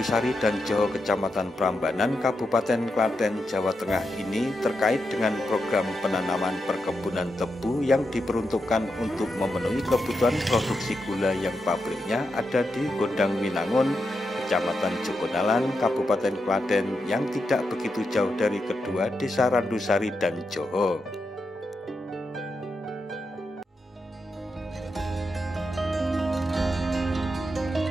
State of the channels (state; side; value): normal; both; correlation 0.86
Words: dan Joho, Kecamatan Prambanan, Kabupaten Klaten, Jawa Tengah ini terkait dengan program penanaman perkebunan tebu yang diperuntukkan untuk memenuhi kebutuhan produksi gula yang pabriknya ada di Gondang Winangun, Kecamatan Jogonalan, Kabupaten Klaten yang tidak begitu jauh dari kedua Desa Randusari dan Joho.